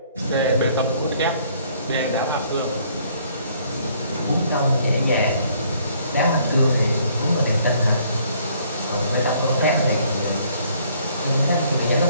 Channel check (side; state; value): both; inverted; correlation -0.63